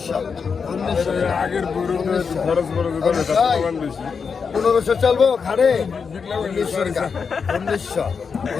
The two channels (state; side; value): quieter; right; 5.7 dB